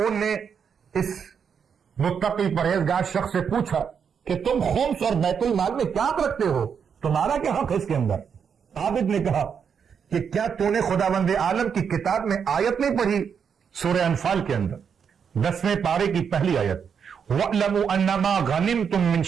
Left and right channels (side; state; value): left; quieter; 7.0 dB